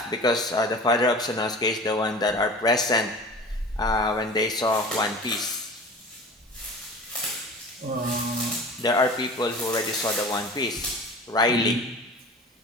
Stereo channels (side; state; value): both; normal; correlation 0.38